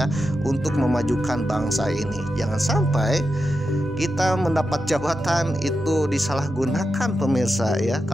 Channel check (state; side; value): normal; both; correlation 0.89